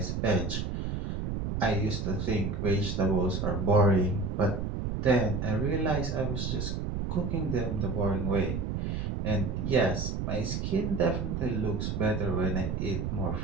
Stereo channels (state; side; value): noise; right; rumble, 2 dB below the sound